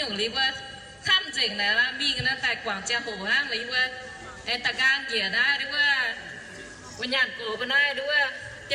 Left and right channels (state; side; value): identical; both; correlation 1.00